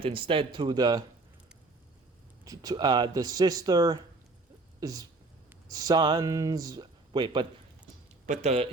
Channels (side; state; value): left; quieter; 3.3 dB